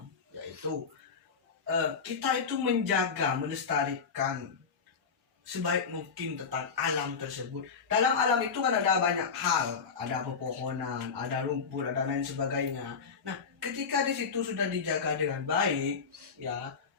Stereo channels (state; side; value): quieter; right; 5.7 dB